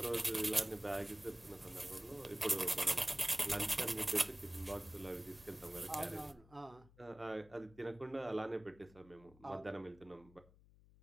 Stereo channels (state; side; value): noise; left; hum, 24 dB below the sound